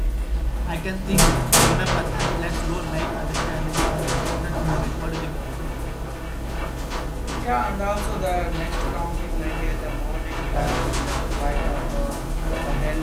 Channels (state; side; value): identical; both; correlation 1.00